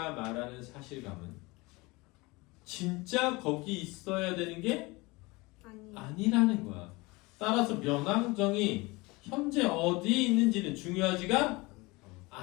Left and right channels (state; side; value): quieter; right; 23.9 dB